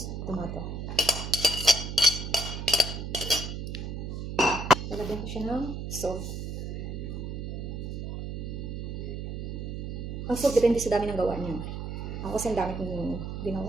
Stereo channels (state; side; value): noise; right; hum, 5 dB below the sound